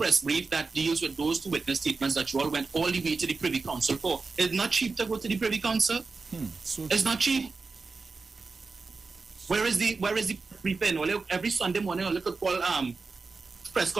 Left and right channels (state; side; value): quieter; left; 4.2 dB